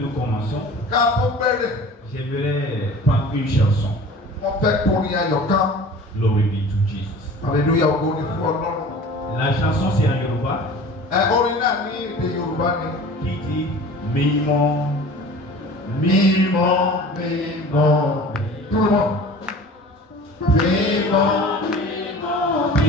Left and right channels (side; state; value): both; normal; correlation 0.42